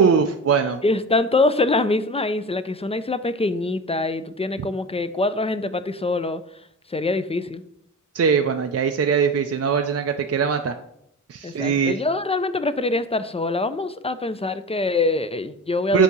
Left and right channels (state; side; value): normal; both; correlation 0.27